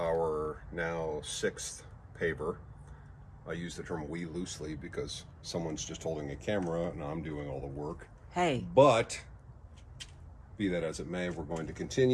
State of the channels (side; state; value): both; identical; correlation 1.00